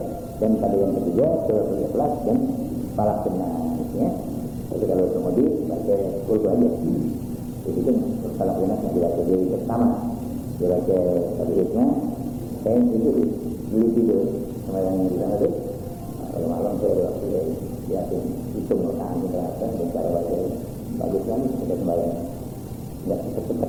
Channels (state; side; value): identical; both; correlation 1.00